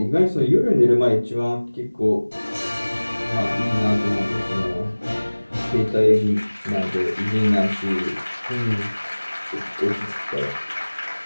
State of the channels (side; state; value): both; inverted; correlation -1.00